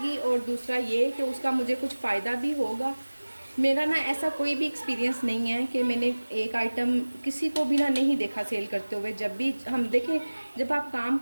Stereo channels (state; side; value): inverted; both; correlation -1.00